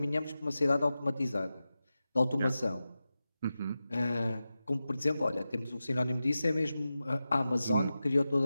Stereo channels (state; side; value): inverted; both; correlation -0.93